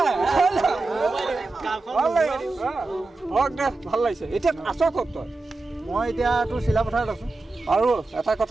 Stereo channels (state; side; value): quieter; left; 3.3 dB